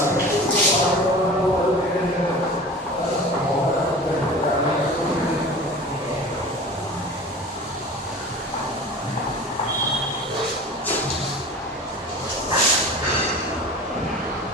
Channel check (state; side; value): normal; both; correlation 0.37